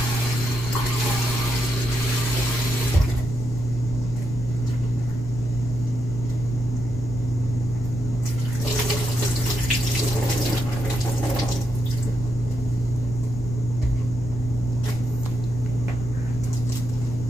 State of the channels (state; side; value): noise; left; rumble, 8 dB below the sound